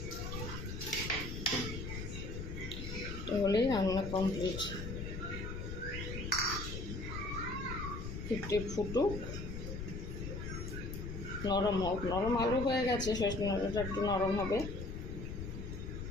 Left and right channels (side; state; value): left; noise; rumble, 6 dB below the sound